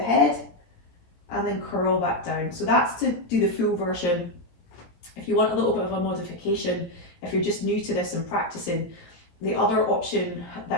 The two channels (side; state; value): right; late; 17 ms